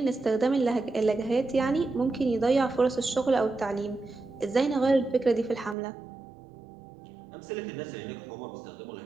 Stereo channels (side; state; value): left; drops out; at 5.8 s